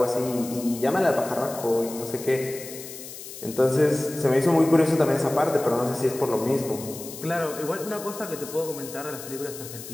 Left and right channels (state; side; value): noise; left; hiss, 12 dB below the sound